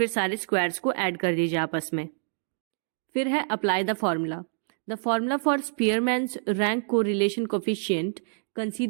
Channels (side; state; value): left; silent; 60 dB below the other